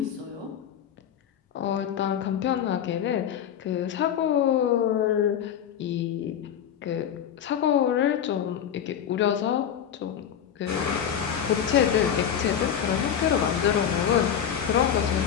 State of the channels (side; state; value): right; quieter; 9.0 dB